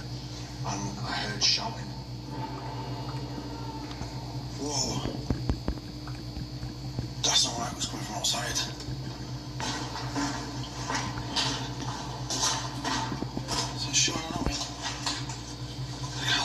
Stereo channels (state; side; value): identical; both; correlation 1.00